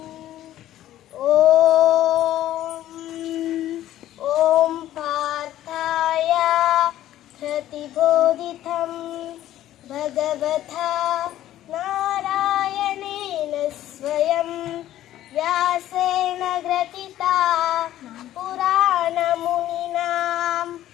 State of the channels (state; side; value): quieter; right; 13.2 dB